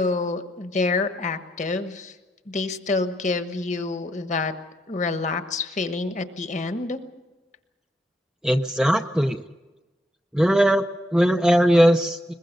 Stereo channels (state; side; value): normal; both; correlation 0.79